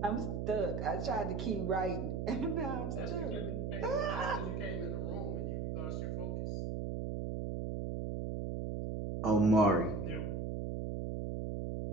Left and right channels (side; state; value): right; noise; hum, 2 dB below the sound